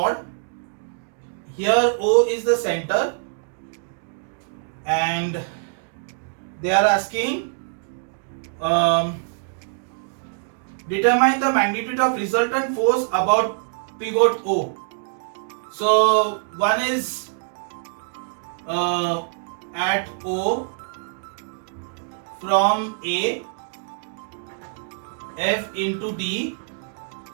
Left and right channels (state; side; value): silent; left; digital silence